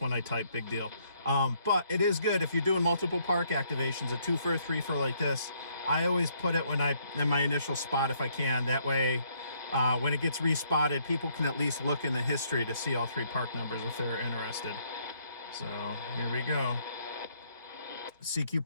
I type, big deal. But it is good if you're doing multiple park activations, a 2-fer, 3-fer like this. I always put it in my initial spot if I can. That way, when it gets respotted, people can at least look in the history to see all three park numbers if they're interested. So here we go. CQ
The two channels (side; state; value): both; inverted; correlation -0.68